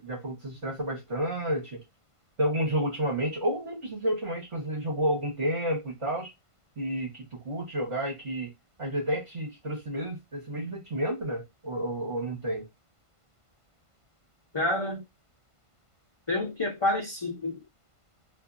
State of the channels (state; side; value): late; left; 1.5 ms